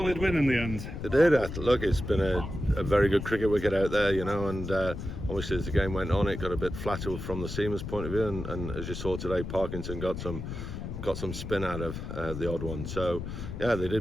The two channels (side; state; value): left; noise; rumble, 7 dB below the sound